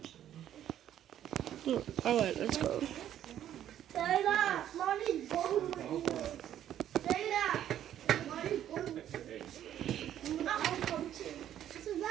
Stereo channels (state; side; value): quieter; left; 11.0 dB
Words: Alright, let's go. Dana, mommy's going with you. Dana, mommy's going with you. I'll come too. So